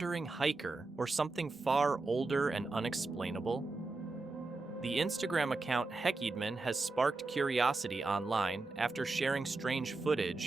hiker, or something far older and unexplainable? The Instagram account Heckidman has sparked curiosity online after sharing strange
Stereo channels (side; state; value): left; quieter; 3.5 dB